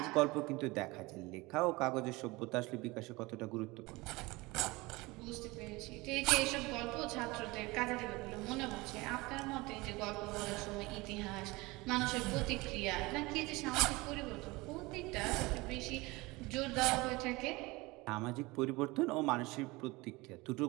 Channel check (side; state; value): left; quieter; 22.8 dB